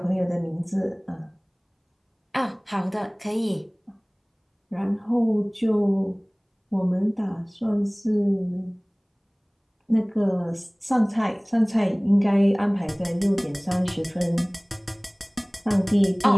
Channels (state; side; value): identical; both; correlation 1.00